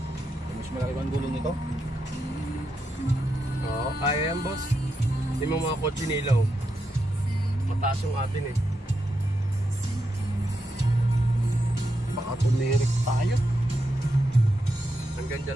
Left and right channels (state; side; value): normal; both; correlation 0.85